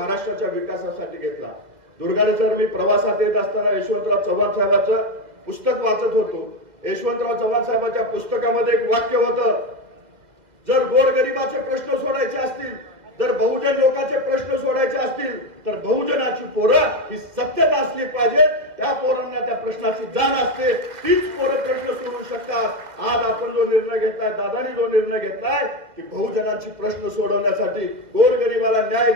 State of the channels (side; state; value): left; late; 2.2 ms